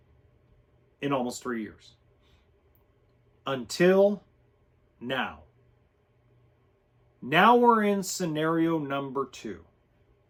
in almost 3 years. Until now. Now we're in scenario number two.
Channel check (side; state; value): both; identical; correlation 1.00